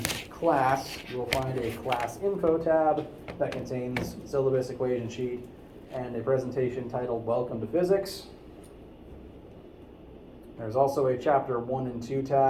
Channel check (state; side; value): identical; both; correlation 1.00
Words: class, you will find a class info tab that contains syllabus equation sheet and a presentation titled Welcome to Physics. There's also a chapter 1 and 2